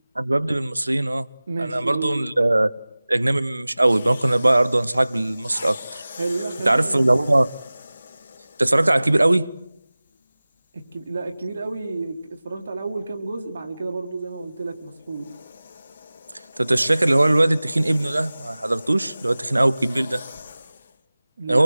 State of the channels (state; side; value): inverted; both; correlation -0.98